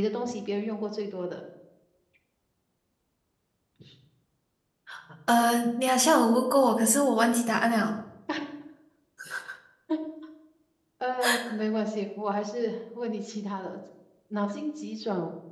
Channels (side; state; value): both; identical; correlation 1.00